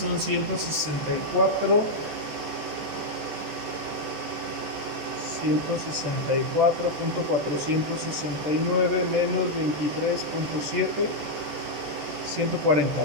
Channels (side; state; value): left; late; 14 ms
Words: 164. 164.469 menos 23.7, 140.